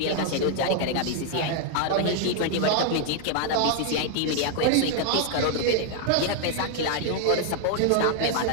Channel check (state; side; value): different; both; correlation 0.00